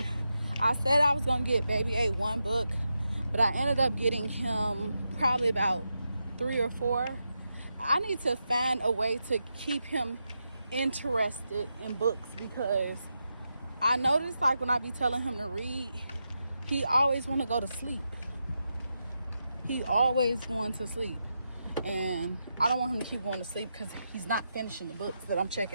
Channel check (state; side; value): inverted; both; correlation -0.87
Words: I said I was gonna get Baby A 1 book, but I ended up getting him probably about 3 or 4. I need to find a way to keep him interested in books, because I noticed like when I be telling him to read, he always want to go to sleep. He always going to sleep, and I don't want him to keep going to sleep because he's not finishing the books that I'm